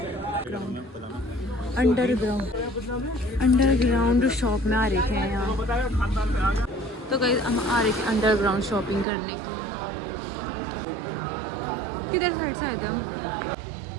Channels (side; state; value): left; drops out; at 9.1 s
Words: अंडरग्राउंड शॉप में आ रहे थे यहाँ। तो गाइस हम आ रहे थे अंडरग्राउंड शॉपिंग करने की। किधर साइड से आए थे हम।